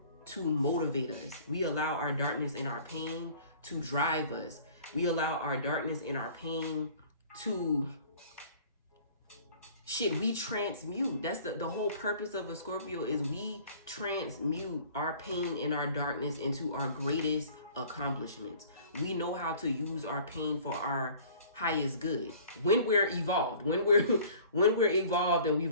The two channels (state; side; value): inverted; both; correlation -0.49